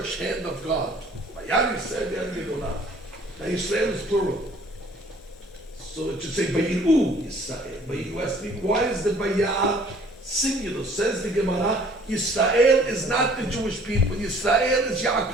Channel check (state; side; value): normal; both; correlation 0.55